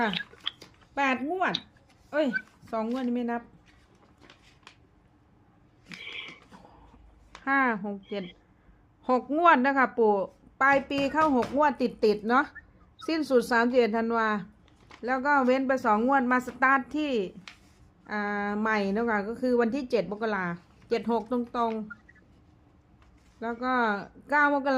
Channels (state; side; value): identical; both; correlation 1.00